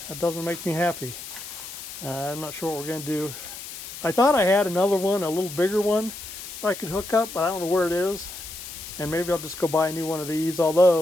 That doesn't make me happy. I'm not sure what we're going to do. I thought I had another one, a little bigger one I could hook up, but I don't know where it is. And maybe I'll just go buy a new one of these,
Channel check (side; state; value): left; noise; hiss, 11 dB below the sound